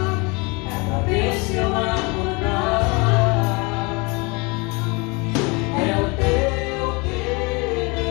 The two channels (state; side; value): quieter; right; 28.4 dB